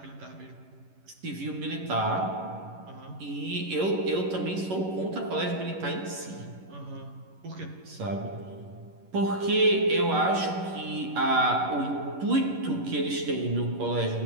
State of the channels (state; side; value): late; left; 11 ms